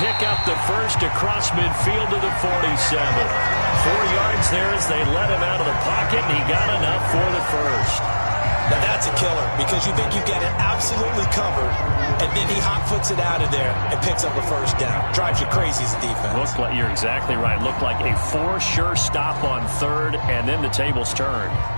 pick up the first across midfield to the 47. 4 yards there as they let him out of the pocket, and he got enough for the first. Now that's a killer because you think you get it absolutely covered, and then he hot-foots it out of there and picks up a first down. Drives you crazy as a defense. Looked like, you're exactly right. Looked like a for sure stop on third, and then the tables turned.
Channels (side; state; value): both; inverted; correlation -1.00